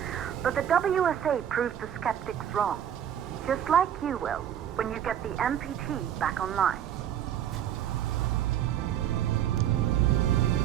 But the WSA proved the skeptics wrong. Just like you will, when you get the MPT back online.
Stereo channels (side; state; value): left; quieter; 10.0 dB